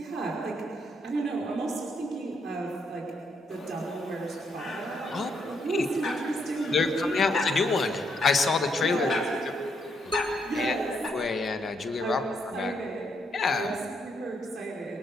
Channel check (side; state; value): both; normal; correlation 0.75